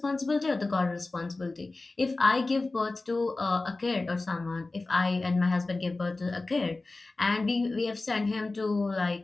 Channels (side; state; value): right; quieter; 3.3 dB